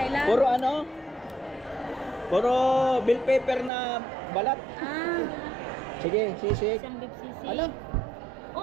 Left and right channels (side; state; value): left; drops out; at 3.7 s